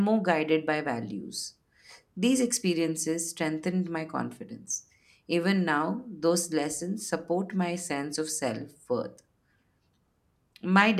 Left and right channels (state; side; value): identical; both; correlation 1.00